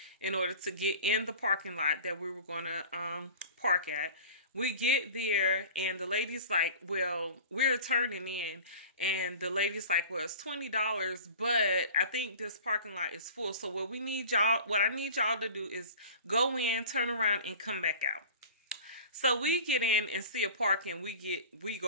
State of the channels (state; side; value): inverted; both; correlation -0.39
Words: in order to get in the parking lot that we were going to park at. We get there and the lady's like, well, we're turning in. And the lady's like, well, it's $20, but I think this parking lot is full. So what I need y'all to do is go in, turn around, and come back out. So we get in and see a park, and we